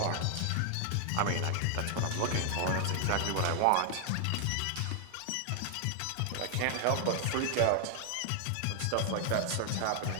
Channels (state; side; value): different; both; correlation 0.00